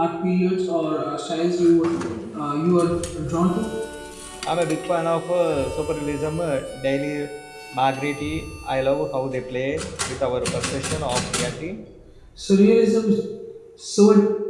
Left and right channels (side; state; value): both; identical; correlation 1.00